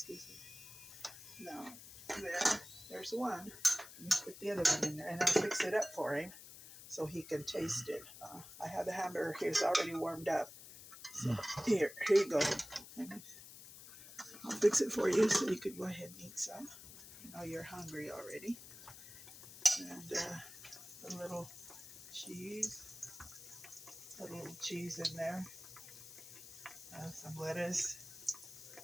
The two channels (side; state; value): left; noise; hiss, 15 dB below the sound